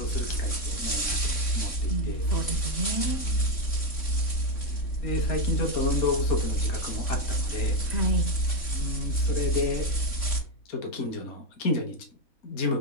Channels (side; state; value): right; late; 3.6 ms